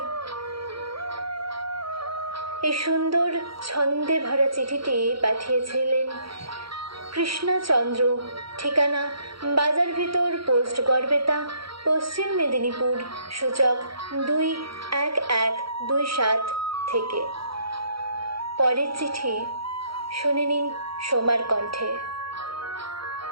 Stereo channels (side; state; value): left; late; 0.75 ms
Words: এই সুন্দর ছন্দে ভরা চিঠিটি পাঠিয়েছিলেন কৃষ্ণচন্দ্র। ঠিকানা বাজার ভিতর, পোস্ট গড়বেতা, পশ্চিম মেদিনীপুর, সূচক 21127 থেকে। পরের চিঠি শুনে নিন সোমার কণ্ঠে।